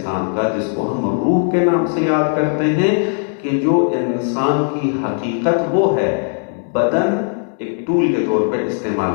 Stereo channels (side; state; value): right; silent; 56 dB below the other